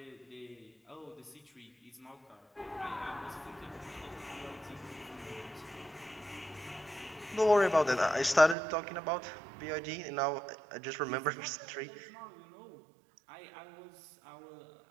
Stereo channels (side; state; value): left; drops out; at 8.6 s